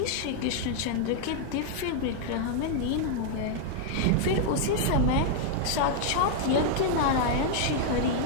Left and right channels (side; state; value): both; different; correlation 0.00